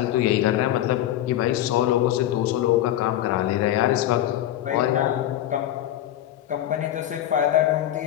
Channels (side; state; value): right; quieter; 12.7 dB